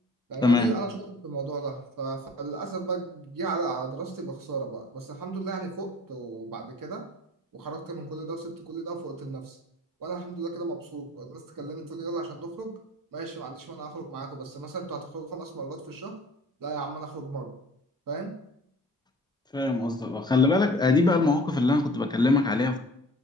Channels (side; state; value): both; normal; correlation 0.49